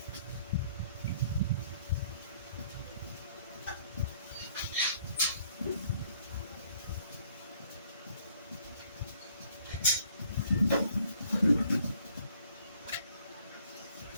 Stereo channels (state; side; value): inverted; both; correlation -0.62